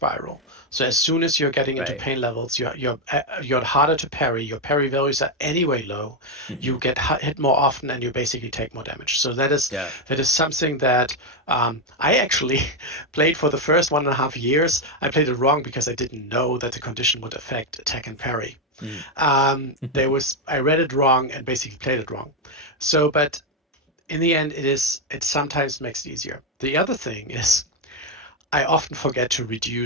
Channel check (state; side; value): normal; both; correlation 0.06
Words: So as soon as you're getting into Right. pain levels, you're harder to parry. Your parry values are anyway low. Hmm. You get hit more often, and you basically take more damage. So Yeah. that is something that I actually played for the first 1.5 years. I played it wrong because I didn't know that the condition would affect attack and parry. Mm. I read it wrong and basically played it wrong. So, but in the end, it sometimes makes it easier. The other thing is I often forget to